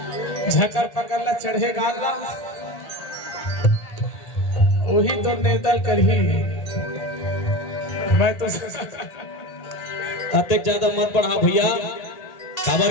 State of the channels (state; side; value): late; right; 1.8 ms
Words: झकर पकड़ ला चढ़े गाला वही तो नेतल कर ही। मैं तो अत्यक ज्यादा मत बढ़ा भैया,